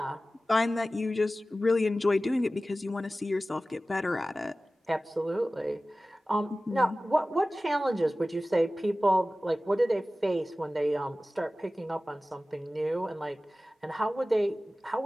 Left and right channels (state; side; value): normal; both; correlation 0.96